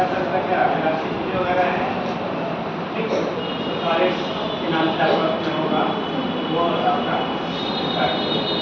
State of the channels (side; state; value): both; identical; correlation 1.00